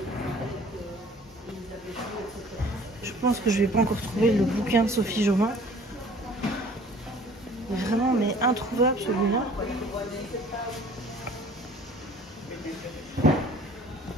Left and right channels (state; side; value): normal; both; correlation 0.51